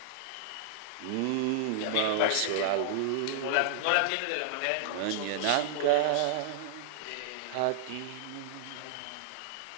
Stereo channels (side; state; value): both; different; correlation -0.01